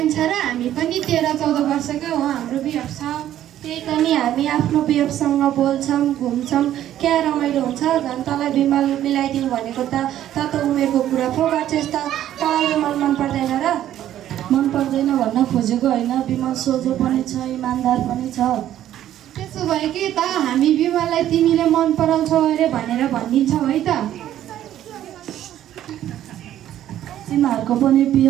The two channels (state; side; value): quieter; left; 12.0 dB